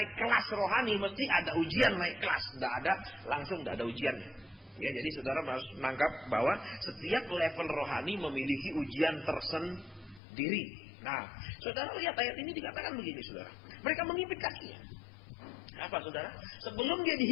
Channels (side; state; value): right; drops out; at 10.2 s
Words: kelas rohani mesti ada ujian naik kelas. Tidak ada langsung, tidak ada ujiannya. Ya, jadi saudara harus menangkap bahwa setiap level rohani memiliki ujian tersendiri. Nah, saudara lihat ayat ini dikatakan begini, saudara. Mereka mengimpit kakinya. Apa, saudara? Sebelum dia